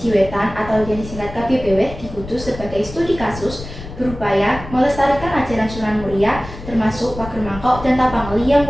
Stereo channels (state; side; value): noise; left; rumble, 12 dB below the sound